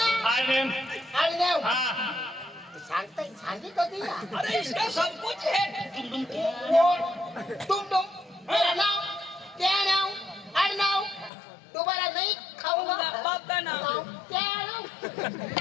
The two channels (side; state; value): right; drops out; at 11.3 s